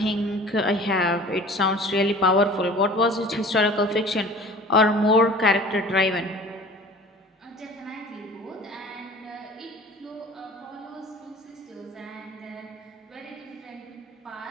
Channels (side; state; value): both; normal; correlation 0.44